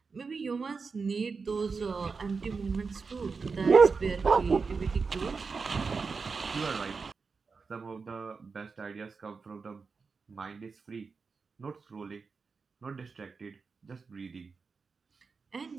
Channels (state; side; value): quieter; left; 4.8 dB